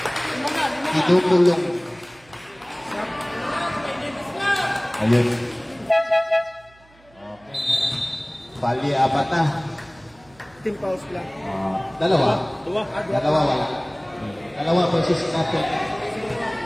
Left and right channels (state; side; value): noise; right; hum, 29 dB below the sound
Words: Itutulong. Ayun. Okay. Bali, apat na. Team pause lang. Dalawa. Dua. Dalawa wala. Dalawa versus natin.